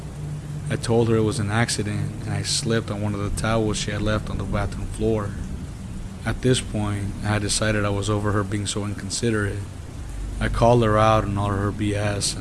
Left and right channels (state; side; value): identical; both; correlation 1.00